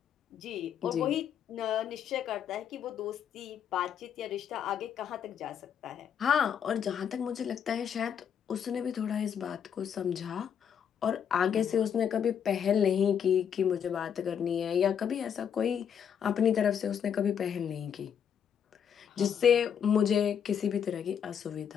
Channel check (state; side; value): quieter; right; 8.2 dB